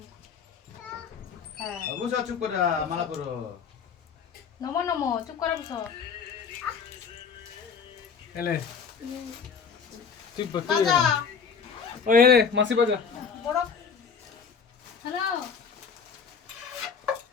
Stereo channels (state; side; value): quieter; right; 6.1 dB